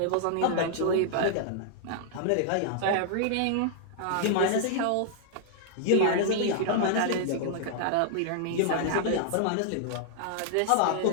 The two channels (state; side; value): different; both; correlation -0.01